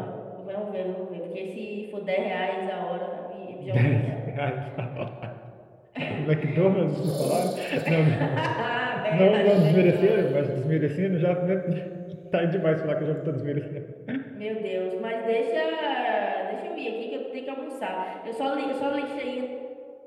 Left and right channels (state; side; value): identical; both; correlation 1.00